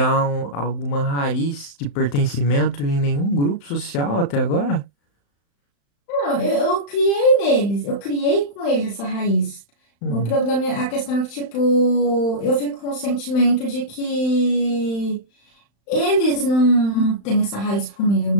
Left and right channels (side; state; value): right; late; 35 ms